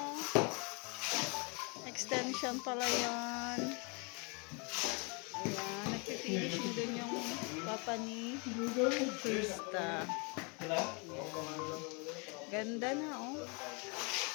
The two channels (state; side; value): quieter; right; 32.4 dB